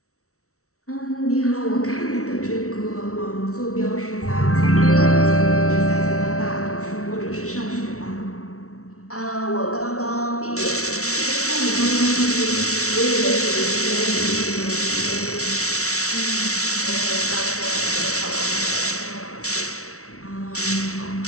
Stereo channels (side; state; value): right; late; 0.64 ms